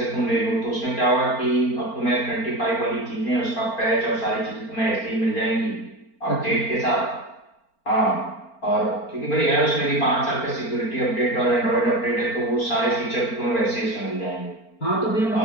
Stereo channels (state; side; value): late; right; 4.4 ms